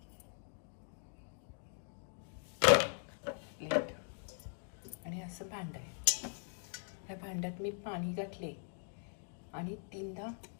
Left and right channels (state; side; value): silent; right; 51 dB below the other